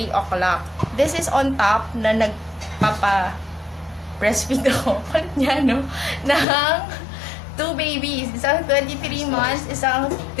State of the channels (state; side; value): drops out; right; at 6.5 s